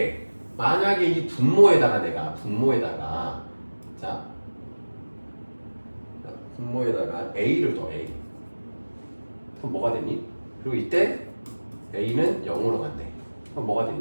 만약에 이 분모에다가 내가 자 분모에다가 a를 더 a 그럼 뭐가 되니? 그리고 이때 a는 0으로 간대. 그럼 뭐가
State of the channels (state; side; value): inverted; both; correlation -1.00